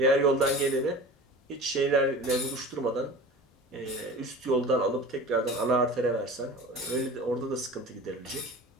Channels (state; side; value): normal; both; correlation 0.37